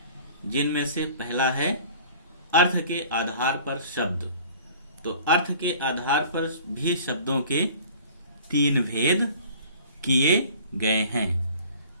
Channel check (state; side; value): inverted; both; correlation -0.47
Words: जिनमें से पहला है अर्थ के आधार पर शब्द। तो अर्थ के आधार पर भी शब्दों के 3 भेद किए गए हैं।